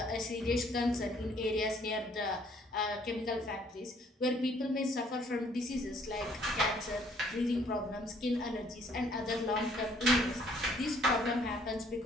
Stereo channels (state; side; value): normal; both; correlation 0.62